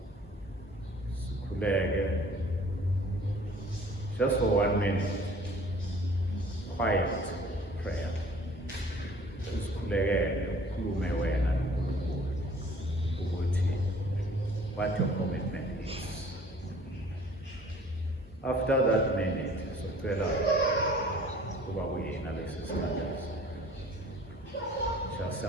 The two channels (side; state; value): both; normal; correlation 0.52